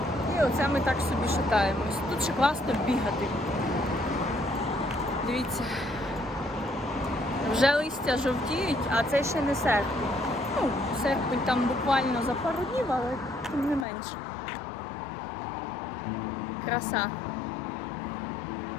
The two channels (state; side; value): drops out; right; at 13.9 s